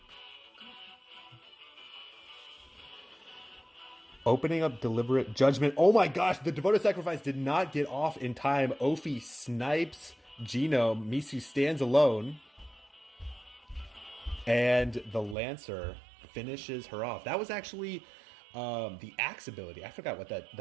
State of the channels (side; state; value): left; drops out; at 15.4 s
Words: Opening up Deliberate Judgment. Oh my gosh, the Devoted Sacrifice did not get off in time. Opie snipes Genome. Misu stands alone. And the Lancer finishes her off. That was actually the Axe ability. I forgot what